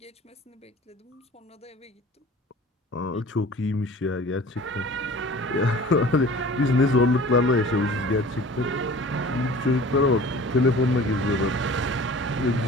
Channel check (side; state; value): both; normal; correlation 0.44